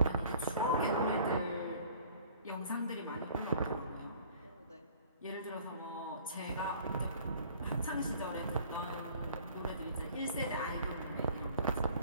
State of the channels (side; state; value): both; inverted; correlation -0.51